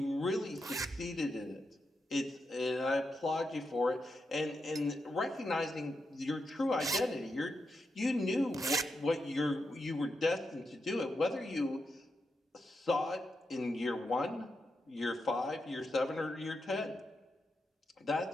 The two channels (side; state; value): both; normal; correlation 0.85